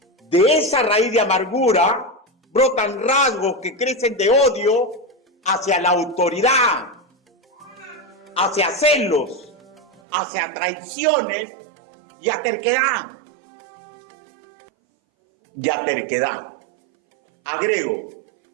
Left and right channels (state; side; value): drops out; left; at 10.0 s